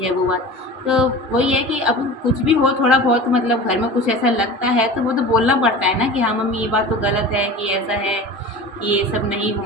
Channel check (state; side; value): normal; both; correlation 0.35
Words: है, वो बात। तो वही है कि अब कुछ भी हो, थोड़ा बहुत मतलब घर में कुछ ऐसा लगता है तो वो तो बोलना पड़ता है ना कि हाँ मम्मी ये बात तो गलत है, कि ऐसा है, कि ये सब नहीं